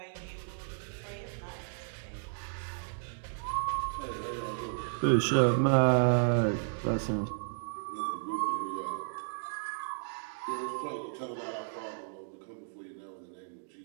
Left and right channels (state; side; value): silent; left; digital silence